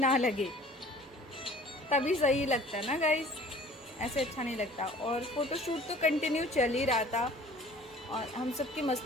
लगे, तभी सही लगता है ना गाइस, ऐसे अच्छा नहीं लगता। और फ़ोटोशूट तो कंटिन्यू चल ही रहा था, और हम सब की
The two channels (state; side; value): normal; both; correlation 0.49